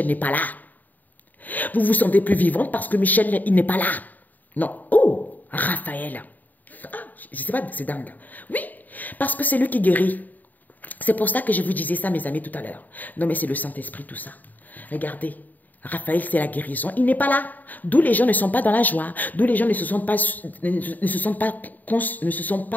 n'est pas là. Vous vous sentez plus vivante parce que Michel, il n'est pas là. Non. Oh, Raphaël. Ah, je ne sais pas, c'est dingue. Oui, parce que c'est lui qui guérit. C'est pour ça que je vous disais ça, mes amis, tout à l'heure. Non, mais c'est le Saint-Esprit, tout ça. Regardez, Raphaël, c'est la guérison. Il n'est pas là. D'où les gens ne sont pas dans la joie. D'où les gens ne se sentent pas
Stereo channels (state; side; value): late; right; 0.083 ms